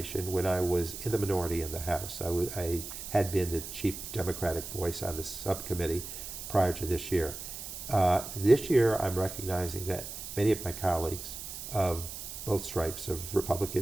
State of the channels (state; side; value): noise; right; hiss, 9 dB below the sound